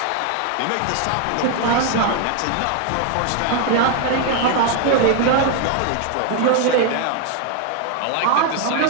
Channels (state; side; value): different; both; correlation 0.01